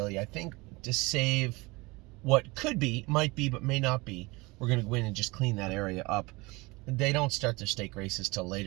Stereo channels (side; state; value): left; quieter; 24.1 dB